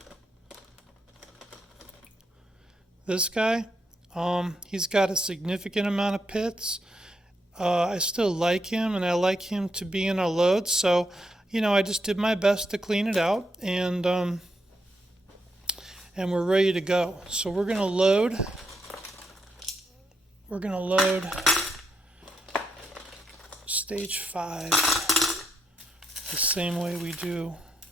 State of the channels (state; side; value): normal; both; correlation 0.81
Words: this guy, he's got a significant amount of pits. I still like him, and I like him to be in our load, so I just did my best to clean it out, and we're ready to go. So we're gonna load stage 5 the same way we do